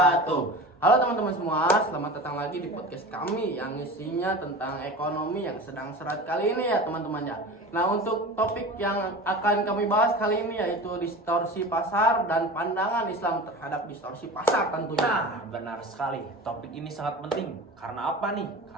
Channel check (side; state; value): both; normal; correlation 0.33